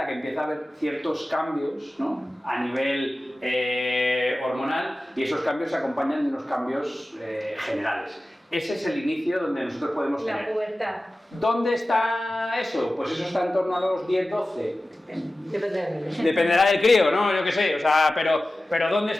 que empieza a haber ciertos cambios, ¿no? A nivel hormonal, y esos cambios se acompañan de unos cambios generales. Ese es el inicio donde nosotros podemos tener. La pubertad. ¿Dónde está eso? Pues eso está en torno a los 10-12. Dependerá del crío, ¿no? Yo qué sé, o sea, pero ¿dónde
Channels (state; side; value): normal; both; correlation 0.96